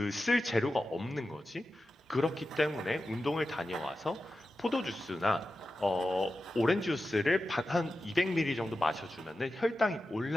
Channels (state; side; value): normal; both; correlation 0.92